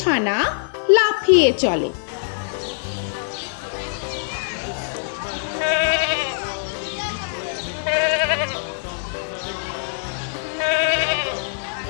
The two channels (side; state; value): right; silent; digital silence